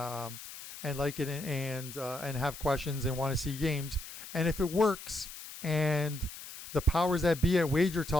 like it and have questions and want to see games, and if it works and the powers that be at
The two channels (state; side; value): noise; left; hiss, 13 dB below the sound